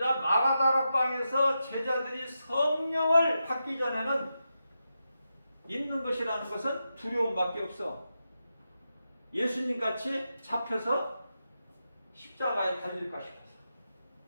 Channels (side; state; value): both; inverted; correlation -0.88